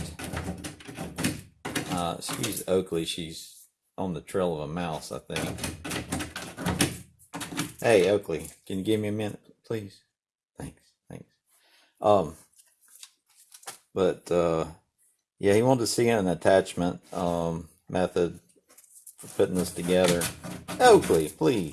Excuse Oakley, she's on the trail of a mouse, I think. Hey, Oakley, can you give me a minute, please? Thanks, thanks. Um, but yeah, he wanted to see an attachment method for putting this together. Oakley,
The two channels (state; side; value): identical; both; correlation 1.00